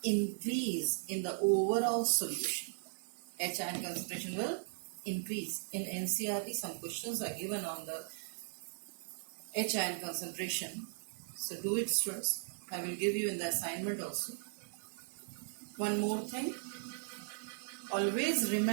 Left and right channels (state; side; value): silent; left; digital silence